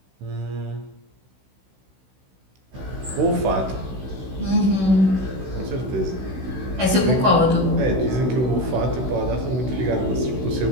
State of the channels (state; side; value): late; left; 16 ms